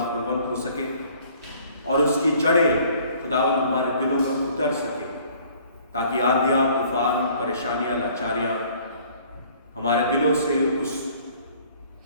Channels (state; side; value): inverted; both; correlation -0.56